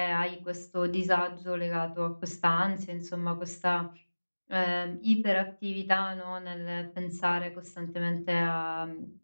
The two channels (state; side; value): inverted; both; correlation -1.00